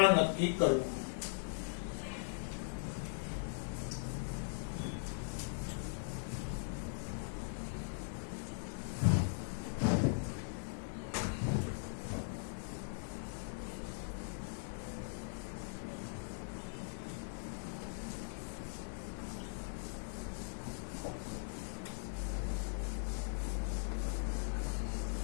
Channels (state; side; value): silent; right; digital silence